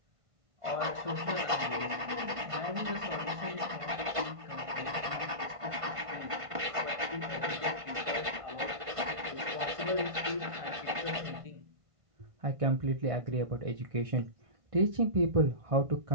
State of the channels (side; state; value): left; late; 1.5 ms